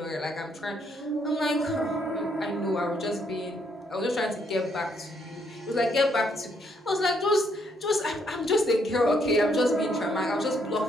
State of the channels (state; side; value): normal; both; correlation 0.72